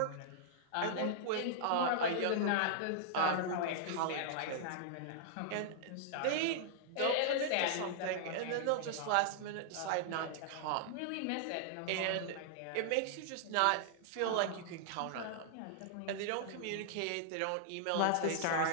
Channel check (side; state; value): both; different; correlation -0.01